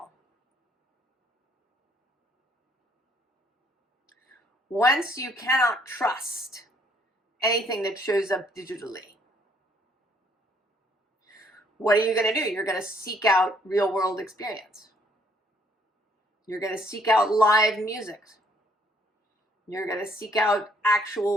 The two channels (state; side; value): normal; both; correlation 0.66